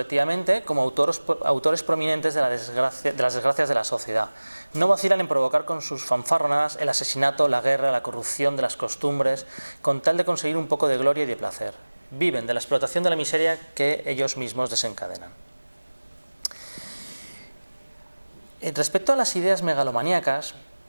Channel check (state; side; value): inverted; both; correlation -1.00